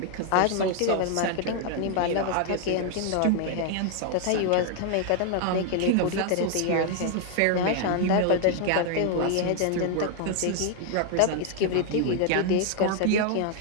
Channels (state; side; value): different; both; correlation 0.00